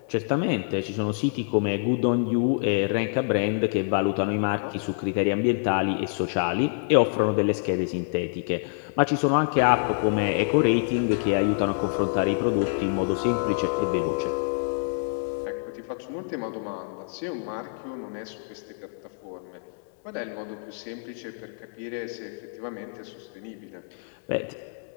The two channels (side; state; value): right; silent; 61 dB below the other